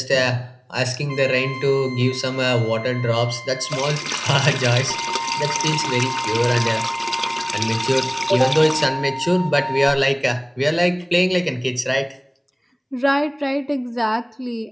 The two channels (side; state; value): both; identical; correlation 1.00